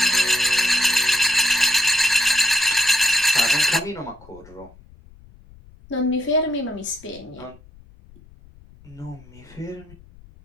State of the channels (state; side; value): noise; left; rumble, 24 dB below the sound